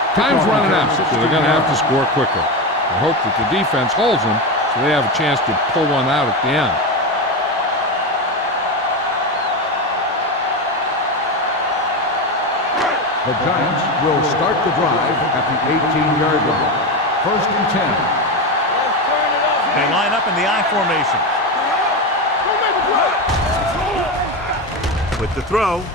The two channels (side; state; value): both; normal; correlation 0.17